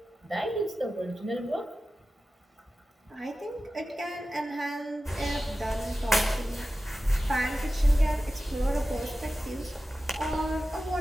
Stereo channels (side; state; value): both; normal; correlation 0.94